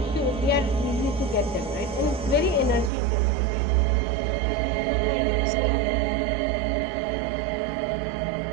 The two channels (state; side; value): drops out; left; at 2.9 s